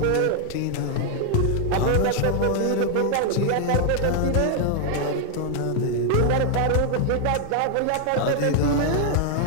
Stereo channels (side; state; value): both; different; correlation 0.00